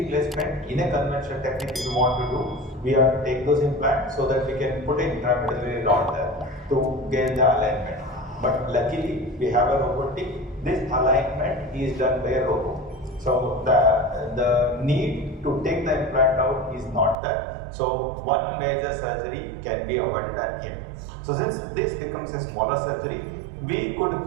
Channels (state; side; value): drops out; left; at 17.2 s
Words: in a conventional technique, if you want to do, we have to take those implants so that we can put an intramedullary rod there to get the alignment. But luckily, we have a robotic. This alignment is done by a robot. So the need to take the implant out is not there. So one major surgery can be avoided at here. So since this becomes a smaller surgery, we could